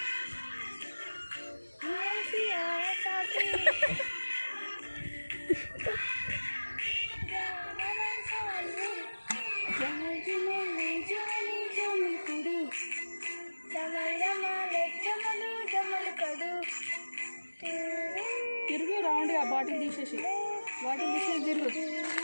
తిరుగు రౌండ్గా బాటిల్ తీసేసి తిరుగు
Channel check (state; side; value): inverted; both; correlation -1.00